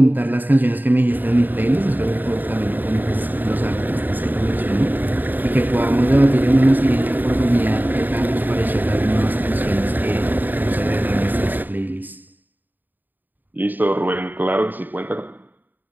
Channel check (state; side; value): late; left; 0.088 ms